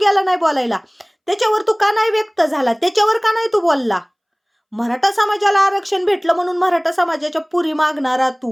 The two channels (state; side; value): identical; both; correlation 1.00